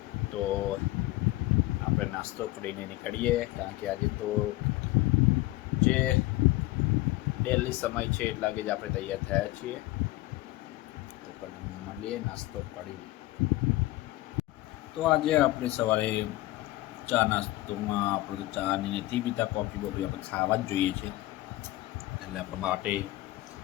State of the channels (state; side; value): quieter; right; 18.2 dB